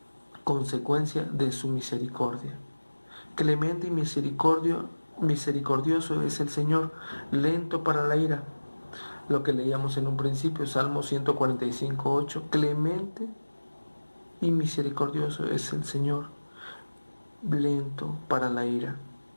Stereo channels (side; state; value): both; inverted; correlation -1.00